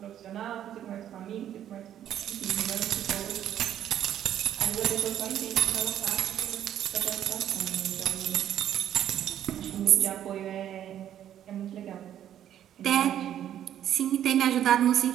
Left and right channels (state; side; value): quieter; left; 10.8 dB